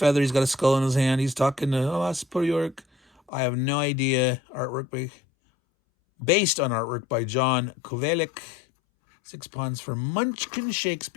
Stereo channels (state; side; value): drops out; right; at 3.3 s